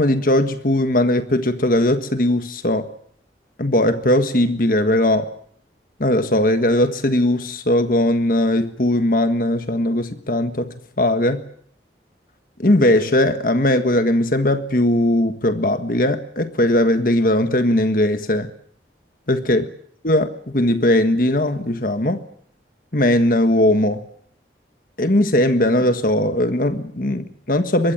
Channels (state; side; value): normal; both; correlation 0.45